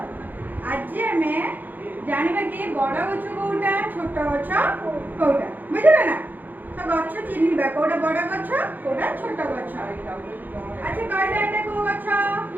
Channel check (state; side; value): late; left; 0.086 ms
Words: ଆଜି ଆମେ ଜାଣିବା କି ବଡ଼ ଗଛ କୋଉଟା ଛୋଟ ଗଛ କୋଉଟା ବୁଝିଲେ ନା? ତ ଗଛ ଚିହ୍ନିବା କୋଉଟା ବଡ଼ ଗଛ କୋଉଟା ଛୋଟ ଗଛ। ଆଚ୍ଛା କହିଲେ ଏଟା କୋଉ ଗଛ?